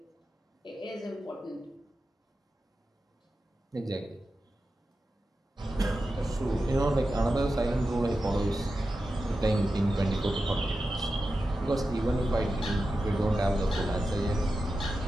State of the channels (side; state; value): both; normal; correlation 0.91